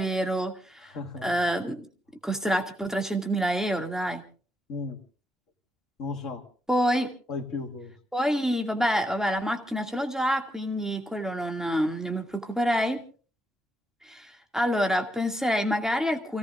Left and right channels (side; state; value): both; normal; correlation 0.81